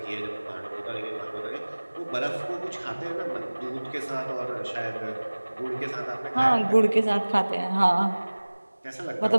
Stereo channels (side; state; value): both; inverted; correlation -1.00